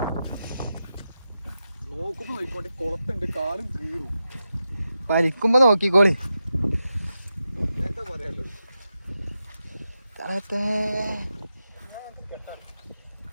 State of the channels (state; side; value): inverted; both; correlation -0.89